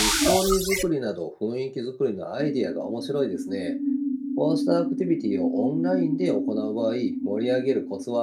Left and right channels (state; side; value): identical; both; correlation 1.00